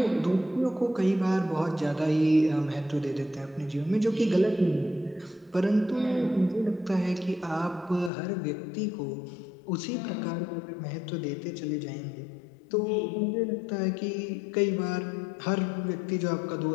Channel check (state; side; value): drops out; right; at 8.1 s